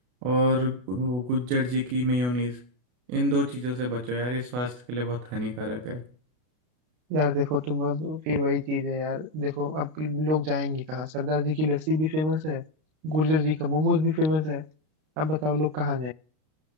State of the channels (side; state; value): left; late; 32 ms